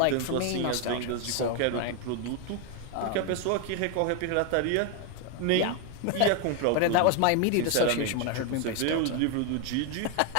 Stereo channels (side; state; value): both; different; correlation 0.01